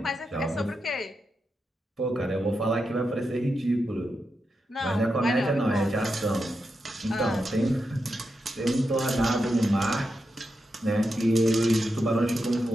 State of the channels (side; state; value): both; normal; correlation 0.87